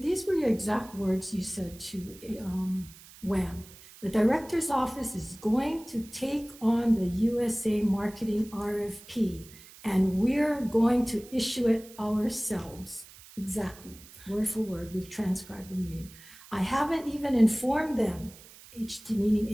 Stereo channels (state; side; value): noise; right; hiss, 20 dB below the sound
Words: were your exact words you said to WAM. The director's office is going to take on the USA marketing RFP, and we're going to issue it ourselves. Exactly, word for word, we've transcribed the meeting. I haven't even informed them, meaning